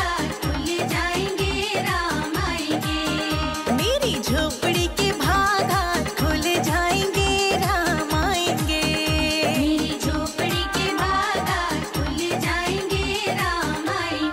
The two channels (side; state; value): both; identical; correlation 1.00